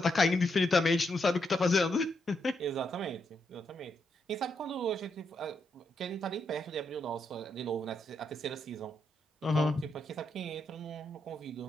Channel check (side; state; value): both; normal; correlation 0.80